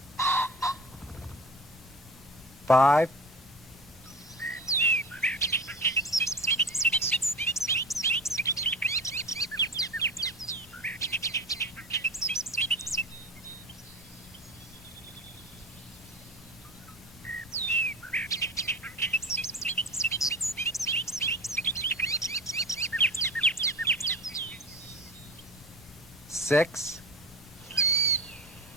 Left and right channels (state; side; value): normal; both; correlation 0.32